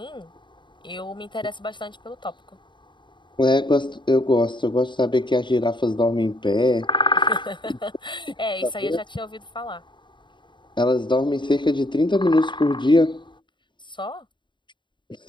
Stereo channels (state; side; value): late; right; 0.23 ms